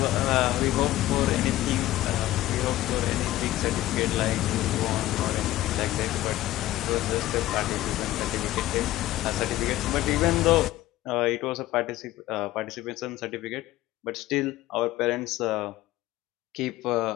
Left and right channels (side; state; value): right; quieter; 15.7 dB